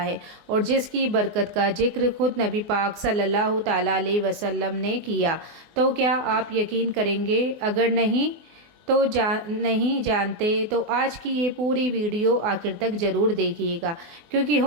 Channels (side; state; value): left; late; 24 ms